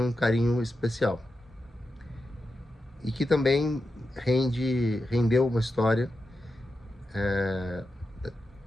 um carinho especial. E que também rendeu uma história, é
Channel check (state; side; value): normal; both; correlation 0.89